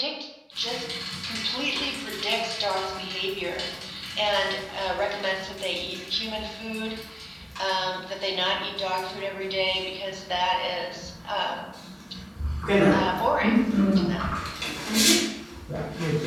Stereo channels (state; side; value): identical; both; correlation 1.00